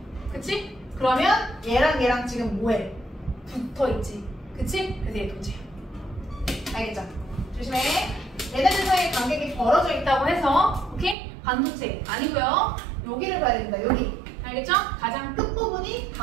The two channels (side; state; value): left; drops out; at 11.2 s